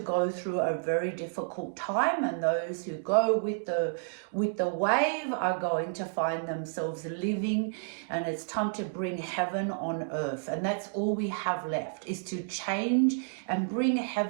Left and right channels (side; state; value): left; silent; digital silence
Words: through a very difficult time, and those who go with the wave are going to find themselves living, and it's time to bring heaven on earth. And that's all we have left, is to change and bring